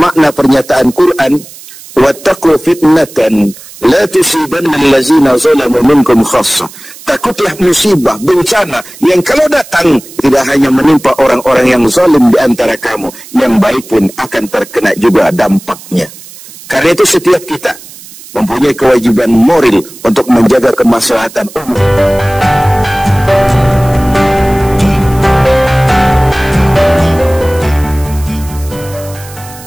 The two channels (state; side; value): noise; right; hiss, 18 dB below the sound